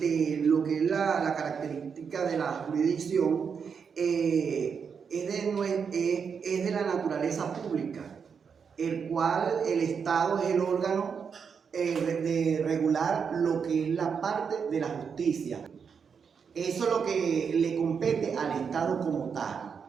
que es la característica de la jurisdicción es de la naturaleza pública, el cual el Estado es el órgano de regular lo que es la parte de la justicia. Eso es lo que le compete al Estado como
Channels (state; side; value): quieter; left; 6.4 dB